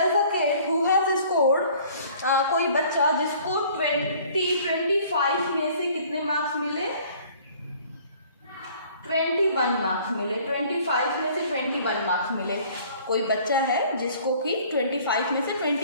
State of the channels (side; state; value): both; inverted; correlation -0.54